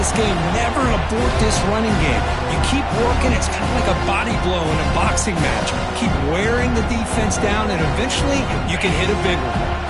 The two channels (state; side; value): identical; both; correlation 1.00